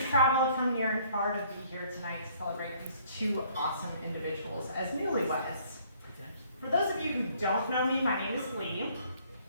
traveled from near and far to be here tonight to celebrate these two awesome individuals as newlyweds. For those of you who don't know me, my name is Leigh.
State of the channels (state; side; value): inverted; both; correlation -0.61